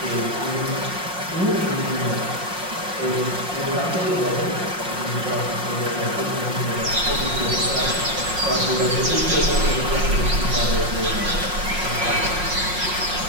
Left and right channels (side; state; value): left; late; 5.6 ms